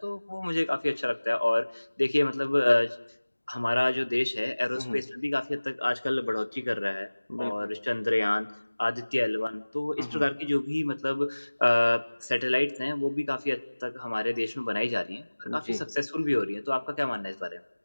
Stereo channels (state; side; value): inverted; both; correlation -1.00